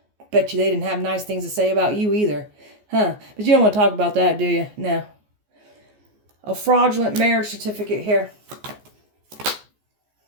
Bet you they didn't have nice things to say about you either. Huh? But you don't want to talk about that, do you? No. A fraudulent marriage certificate here.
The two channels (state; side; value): late; left; 14 ms